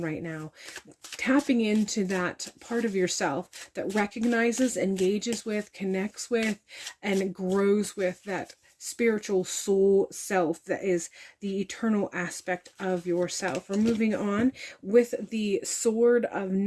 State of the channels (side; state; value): both; identical; correlation 1.00